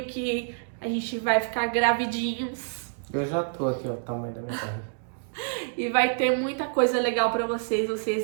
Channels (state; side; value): silent; left; digital silence